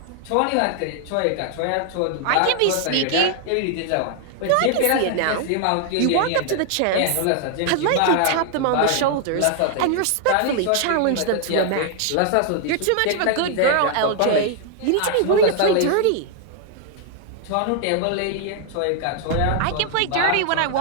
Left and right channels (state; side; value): different; both; correlation 0.00